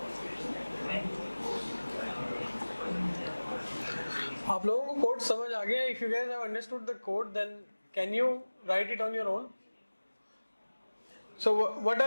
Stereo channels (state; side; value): inverted; both; correlation -1.00